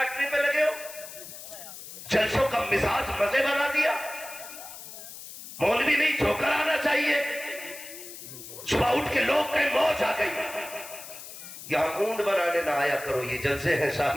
پہ لگے ہو، جلسوں کا مزاج مزے بنا دیا، مولوی نہیں جھوکر آنا چاہیے، صبح اٹھ کے لوگ کہیں موج آ گئی۔ یہاں اونٹ بنانے نہ آیا کرو، یہ جلسے ہیں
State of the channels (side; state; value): left; noise; hiss, 13 dB below the sound